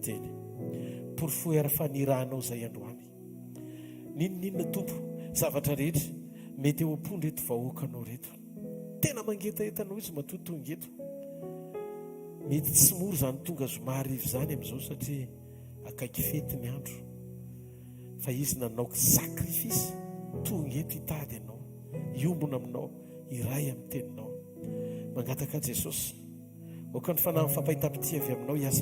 teny. Porfoy ara-fanirahanao zay androany. Ninona tompo zavatra rehetra mety eo am-pony reto vahoakanao reto. Tena mangetaetanao izy matotongeto. Mety tsy moro zany tonga zomarivo zany amin'izao satria akaiky fety ny andro. Fa izy nanaoko sakrifisy tongeto hitady ianao, iombona aminao, iray amin'ny teninao. Mangataka Jesosy oka ny fanahy fampahita-pity avy aminao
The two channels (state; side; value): identical; both; correlation 1.00